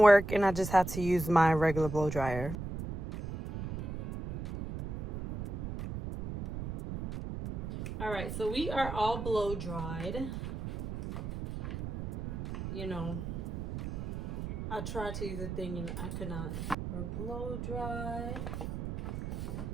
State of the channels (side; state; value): right; noise; rumble, 6 dB below the sound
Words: work, and I just had to use my regular blow dryer. All right, so we are all blow dried. You know, I tried to use a thing and I could not. We're blow dried.